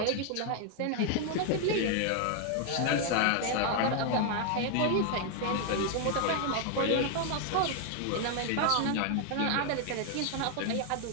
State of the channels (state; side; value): different; both; correlation 0.00